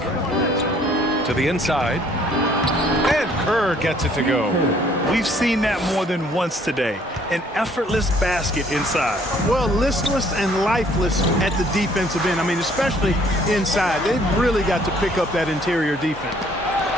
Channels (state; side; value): normal; both; correlation 0.61